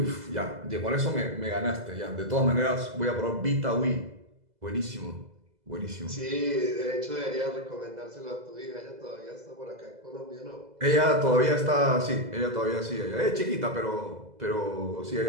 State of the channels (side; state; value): left; late; 2.0 ms